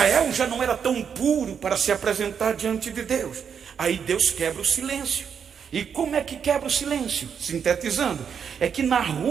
já não era tão puro para se apresentar diante de Deus. Aí Deus quebra o silêncio. E como é que quebra o silêncio? Sintetizando, é que na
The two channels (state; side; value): quieter; left; 7.2 dB